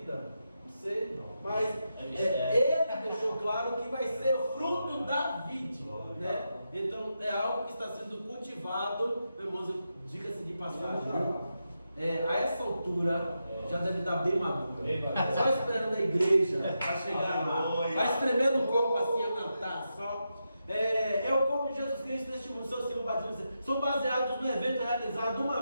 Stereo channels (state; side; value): inverted; both; correlation -0.86